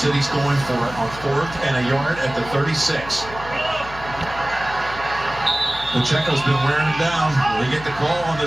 going for it on 4th and a yard at the 36. Pacheco's been wearing him down. They get the call on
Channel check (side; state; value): left; noise; hum, 15 dB below the sound